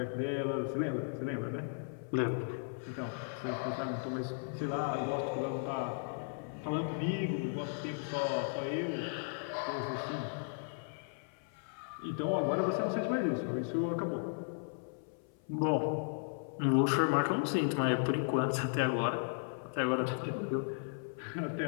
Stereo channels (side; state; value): right; silent; 54 dB below the other